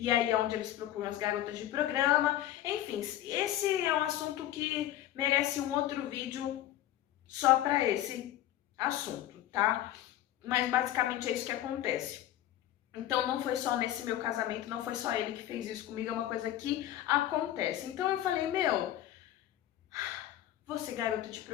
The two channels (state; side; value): quieter; right; 13.1 dB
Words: aí é onde eles procuram as garotas de programa. Enfim, esse é um assunto que merece um outro vídeo só para esse assunto, tá? Mas basicamente é isso que acontece. Então não foi só nesse meu casamento, não foi só ele que fez isso comigo, é uma coisa que acontece. Então eu falei, vou ser garota de